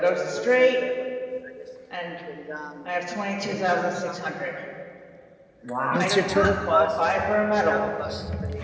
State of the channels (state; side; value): identical; both; correlation 1.00